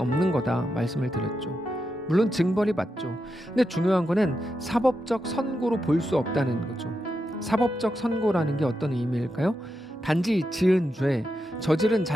거다 말씀을 드렸죠. 물론 징벌이 맞죠. 근데 중요한 거는 사법적 선고로 볼 수 없다는 거죠. 사법적 선고라는 게 어떤 의미일까요? 단지 지은 죄, 저지른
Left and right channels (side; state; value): both; normal; correlation 0.86